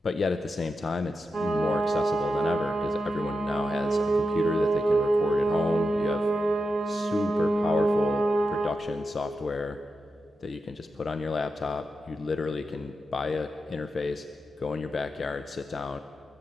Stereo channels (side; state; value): both; normal; correlation 0.88